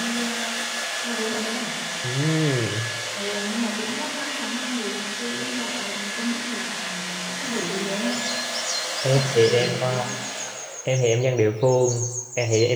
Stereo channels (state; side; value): identical; both; correlation 1.00